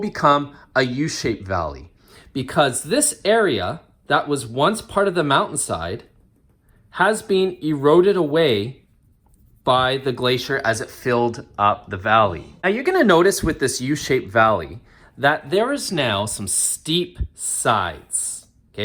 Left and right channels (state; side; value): identical; both; correlation 1.00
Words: a U-shaped valley. Because this area that was once part of the mountainside has been eroded away by the glacier as it filled up the valley. Now you're going to notice with this U-shaped valley that there is now some steep sides.